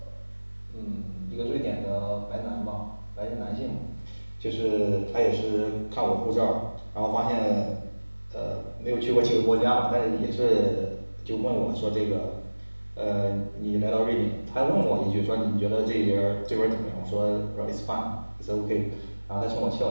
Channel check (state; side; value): inverted; both; correlation -1.00